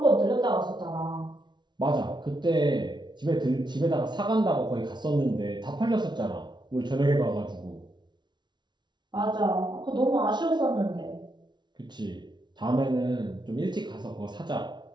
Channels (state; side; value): late; left; 0.21 ms